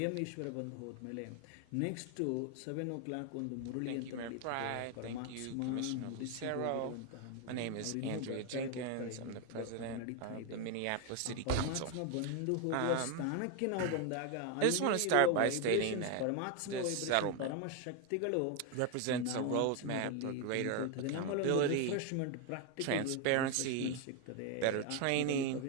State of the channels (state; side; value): different; both; correlation 0.01